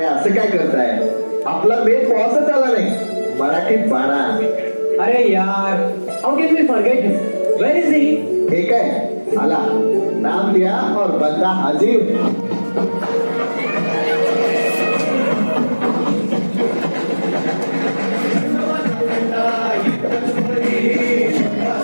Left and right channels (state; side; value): inverted; both; correlation -1.00